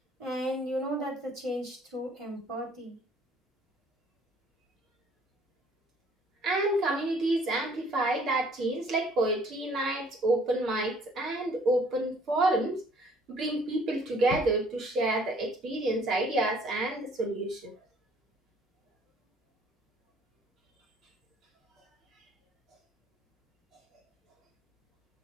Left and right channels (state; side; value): normal; both; correlation 0.59